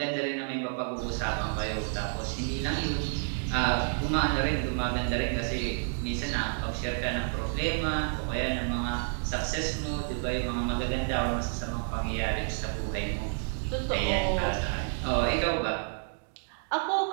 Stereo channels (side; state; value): left; silent; 58 dB below the other